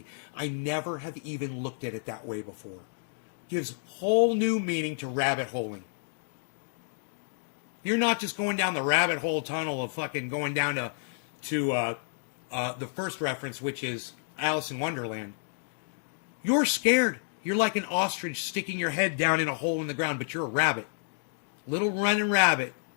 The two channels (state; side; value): silent; right; digital silence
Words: I never have even looked at it that way before. Gives whole new meaning to rabbit holing. You're not just going down the rabbit hole tunnel of fucking going down to the first reference, which is Alice in Wonderland. You're scared. You're like an ostrich sticking your head down in a hole in the ground, but you're a rabbit. Little running rabbit.